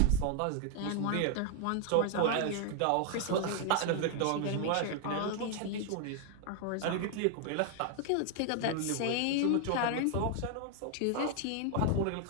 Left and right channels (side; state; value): both; different; correlation 0.00